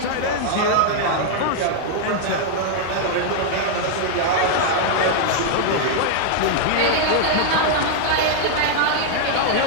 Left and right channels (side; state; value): both; different; correlation -0.01